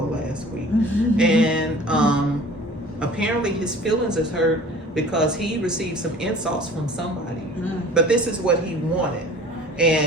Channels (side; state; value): both; normal; correlation 0.45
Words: last week. And apparently his feelings is hurt because he received some insults from somebody. But this is what he wanted.